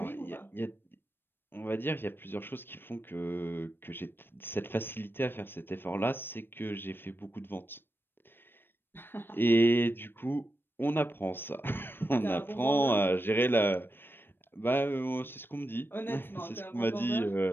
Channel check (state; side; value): late; right; 0.099 ms